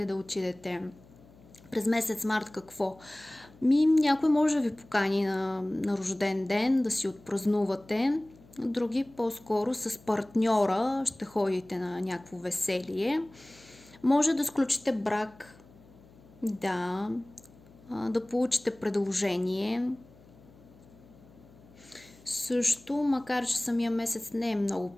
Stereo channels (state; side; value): noise; left; hum, 25 dB below the sound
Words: да отидете. През месец март какво? Някой може да ви покани на рожден ден, да си отпразнувате. Други по-скоро с партньора ще ходите на някакво веселие. Може да сключите брак, да получите предложение. Също, макар че самия месец не е много